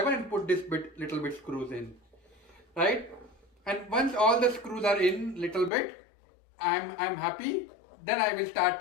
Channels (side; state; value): right; drops out; at 5.7 s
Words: and put this little bit screws in, right? And once all the screws are in little bit, I'm happy. Then I will start